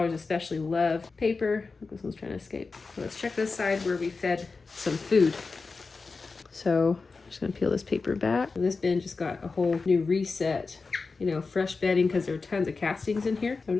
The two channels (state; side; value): quieter; right; 4.3 dB